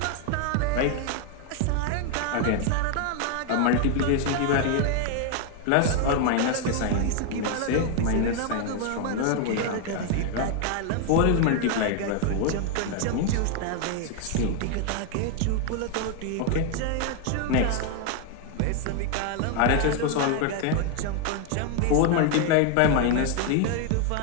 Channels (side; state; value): both; different; correlation 0.01